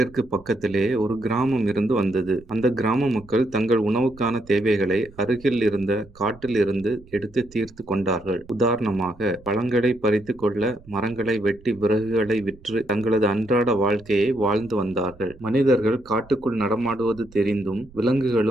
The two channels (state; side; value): noise; right; rumble, 23 dB below the sound